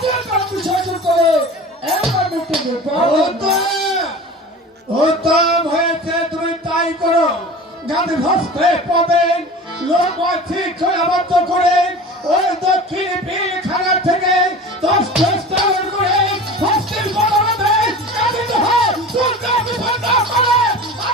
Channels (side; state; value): both; normal; correlation 0.36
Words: কাজ বিসর্জন করে এমন মিটিং উত্তম হয়েছে তুমি তাই করো গান্ধী হস্তে পাবেন লোক ঠিক করে আবদ্ধ করে ওই দক্ষিণ পিলখানা থেকে 10 করে হস্তের বদলে গান্ধী হয় দুর্গা বিপন্ন করে